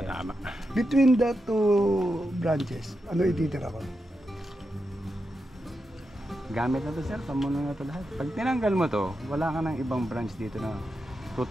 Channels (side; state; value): both; normal; correlation 0.87